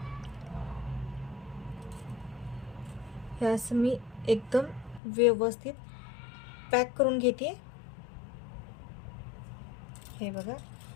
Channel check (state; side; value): drops out; right; at 5.0 s